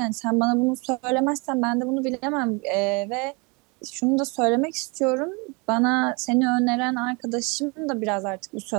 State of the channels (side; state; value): left; quieter; 29.9 dB